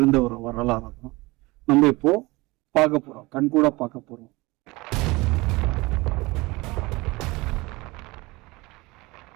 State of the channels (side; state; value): left; quieter; 22.6 dB